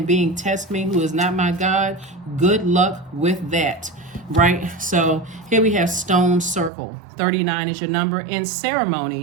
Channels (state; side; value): drops out; left; at 6.7 s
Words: being test me who is not my God? Good luck with that, right? So here we have stone circle. 39 is your number. In